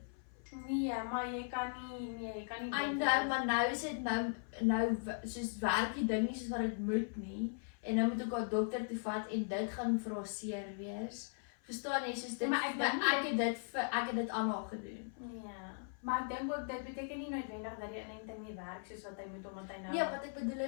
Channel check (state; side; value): silent; right; 52 dB below the other